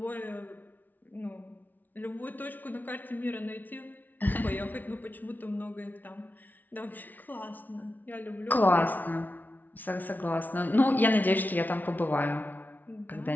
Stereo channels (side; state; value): right; late; 0.083 ms